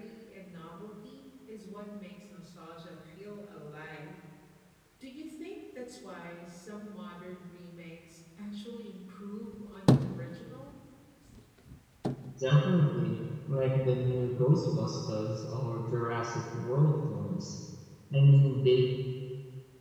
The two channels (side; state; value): both; identical; correlation 1.00